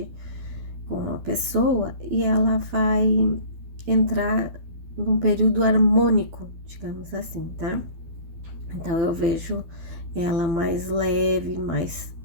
com a pessoa e ela vai entrar num período harmônico, digamos assim, tá? Então eu vejo ela mais leve, mais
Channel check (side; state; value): left; late; 12 ms